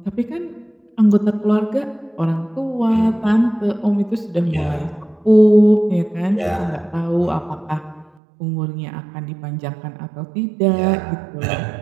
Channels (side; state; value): left; drops out; at 8.1 s